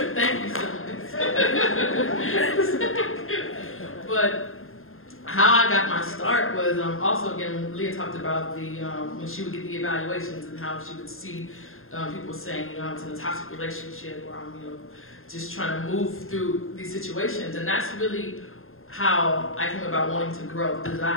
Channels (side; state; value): right; late; 0.61 ms